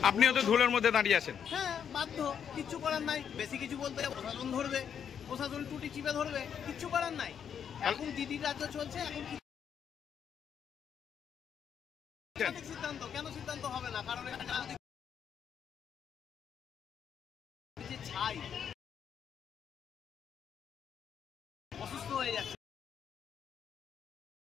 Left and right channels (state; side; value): quieter; right; 8.0 dB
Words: আপনিও তো ধুলোর মধ্যে দাঁড়িয়ে আছেন। হ্যাঁ, বাধ্য, কিচ্ছু করার নাই। বেশি কিছু বলতে প্রশাসন ধরবে, প্রশাসন টুটি চিপে ধরবে, কিচ্ছু করার নাই। এখন দিদির রাজ্য চলছে, এখন সিদ্ধান্ত কেন সিদ্ধান্ত হবে না? কারণ ছাই অসুস্থ হয়ে যাচ্ছে।